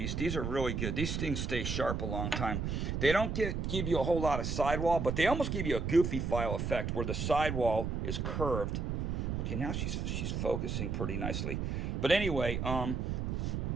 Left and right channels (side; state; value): right; noise; rumble, 1 dB below the sound